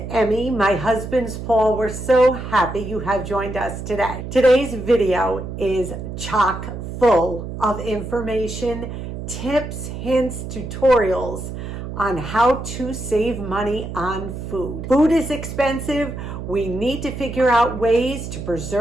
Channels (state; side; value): noise; right; hum, 8 dB below the sound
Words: Emmy. My husband's Paul. We're so happy you have joined us today. Today's video is chock full of information, tips, hints, tutorials on how to save money on food. Food is expensive. We need to figure out ways to